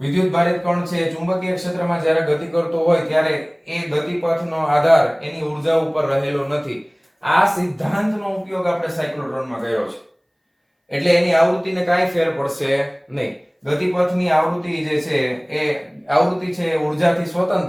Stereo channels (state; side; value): identical; both; correlation 1.00